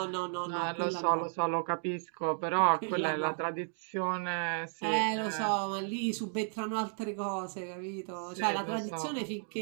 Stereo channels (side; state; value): left; silent; 55 dB below the other